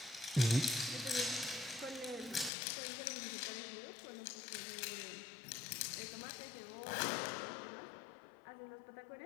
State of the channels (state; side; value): drops out; right; at 2.5 s